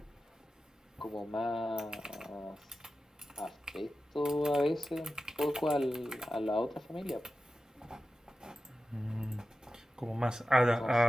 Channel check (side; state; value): both; normal; correlation 0.93